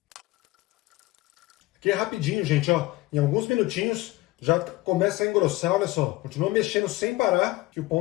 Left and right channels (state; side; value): quieter; right; 19.4 dB